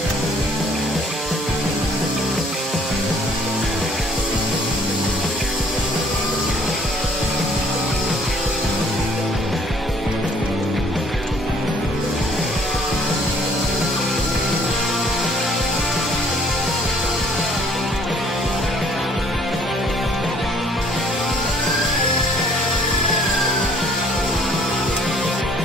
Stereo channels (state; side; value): normal; both; correlation 0.59